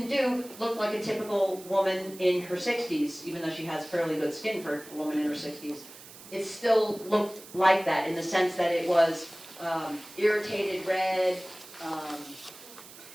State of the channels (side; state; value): right; noise; hiss, 18 dB below the sound